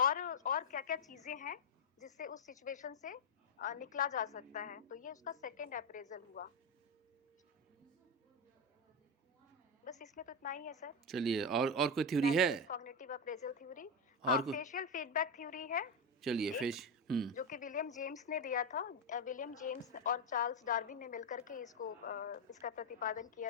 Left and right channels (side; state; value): both; normal; correlation 0.08